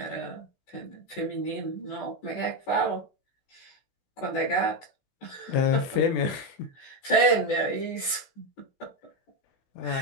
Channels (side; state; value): right; late; 16 ms